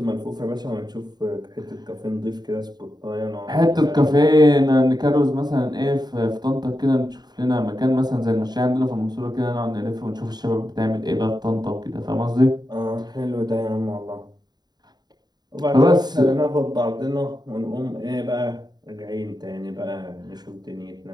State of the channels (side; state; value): left; late; 0.20 ms